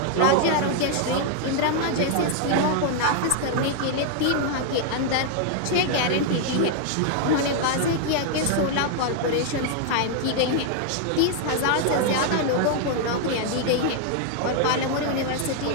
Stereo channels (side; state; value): both; different; correlation 0.00